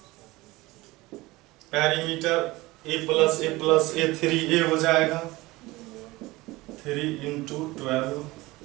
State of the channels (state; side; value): quieter; left; 20.5 dB